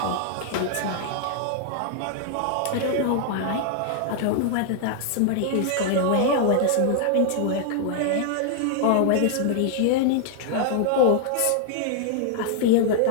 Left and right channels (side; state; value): both; different; correlation -0.01